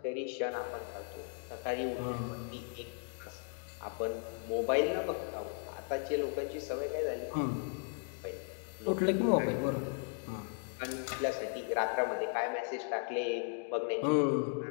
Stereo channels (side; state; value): right; silent; 54 dB below the other